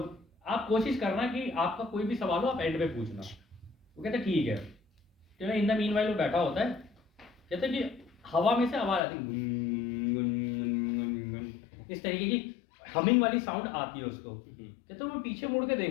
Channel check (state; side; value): drops out; right; at 9.0 s